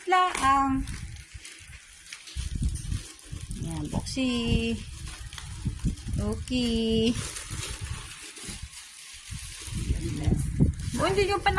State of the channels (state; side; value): identical; both; correlation 1.00